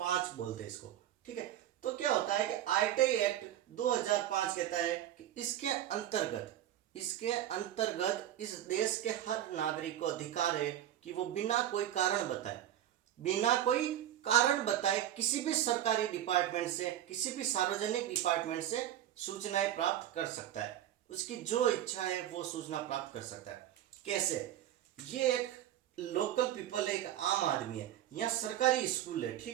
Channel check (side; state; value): left; quieter; 11.9 dB